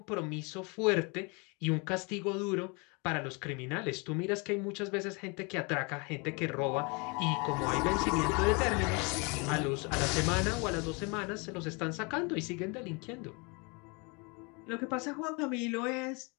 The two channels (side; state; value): right; quieter; 30.7 dB